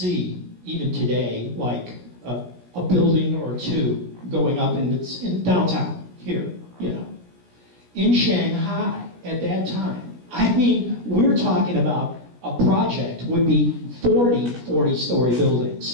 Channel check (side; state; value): left; late; 17 ms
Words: even today, like a building or two going up in downtown here, In Shanghai at that time, I mean, we're talking about a project would be 40-story